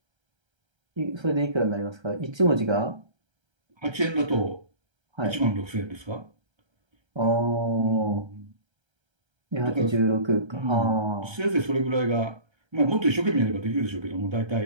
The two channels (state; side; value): late; left; 1.3 ms